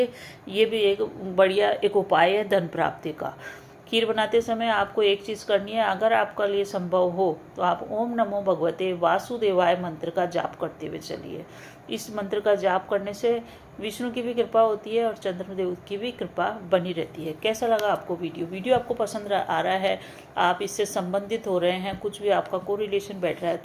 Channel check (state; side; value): identical; both; correlation 1.00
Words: ये भी एक बढ़िया उपाय है धन प्राप्ति का। खीर बनाते समय आपको एक चीज़ करनी है, अगर आपका लिए संभव हो तो आप ओम नमो भगवते वासुदेवाय मंत्र का जाप करते हुए चलिए। इस मंत्र का जाप करने से विष्णु की भी कृपा होती है और चंद्रदेव की भी कृपा बनी रहती है। कैसा लगा आपको वीडियो आपको पसंद आ रहा है, आप इससे संबंधित हो रहे हैं, कुछ भी आपका कोरिलेशन बैठ रहा है,